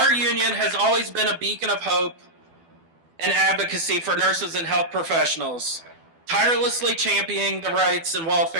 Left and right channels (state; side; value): late; left; 12 ms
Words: union has always been a beacon of hope and advocacy for nurses and health professionals, tirelessly championing the rights and